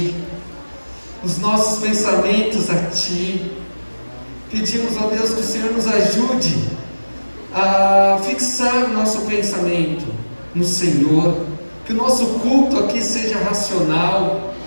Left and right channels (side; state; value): both; inverted; correlation -1.00